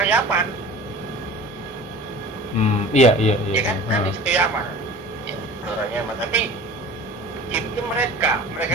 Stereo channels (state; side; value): normal; both; correlation 0.41